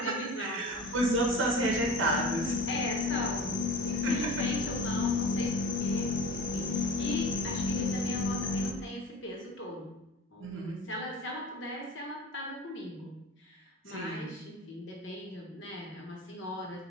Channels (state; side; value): normal; both; correlation 0.36